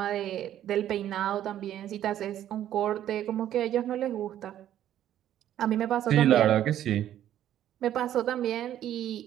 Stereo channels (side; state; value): left; quieter; 11.6 dB